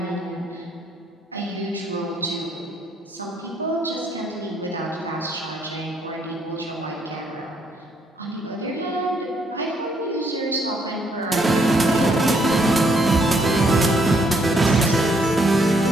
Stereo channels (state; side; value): normal; both; correlation 0.70